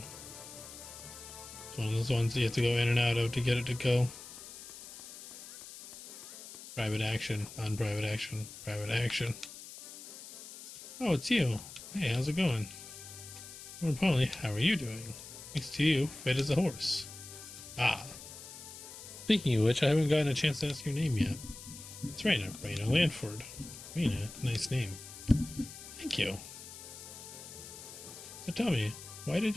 It's one of those ones you have to go in and out of to get it to go. Private action, on private action, private action. Oh, it's you. Hey, how's it going? More importantly, how are you doing? Thanks to you, fit as a horse. Ah. Speaking of which, I haven't gotten a chance to ask your name yet. It's Raina. Raina Lanford. Raina, nice name. Thank you. So tell me, why did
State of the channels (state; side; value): noise; left; hiss, 14 dB below the sound